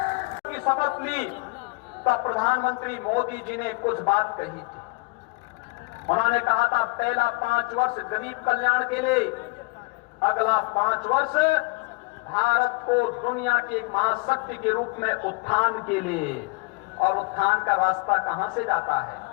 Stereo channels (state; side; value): quieter; right; 27.8 dB